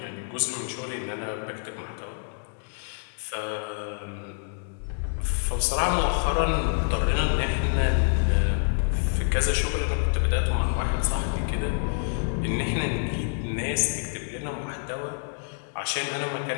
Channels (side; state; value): right; silent; 60 dB below the other